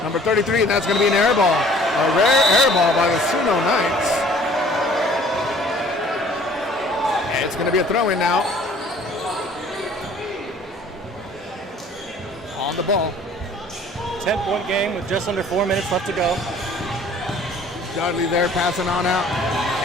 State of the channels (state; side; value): normal; both; correlation 0.53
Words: number 33, and that's going to be an air ball. A rare air ball by the SUNO Knights. And it's going to be a throw-in now. On the ball. 10-point game with just under 4 minutes left to go. Dudley there passing on out.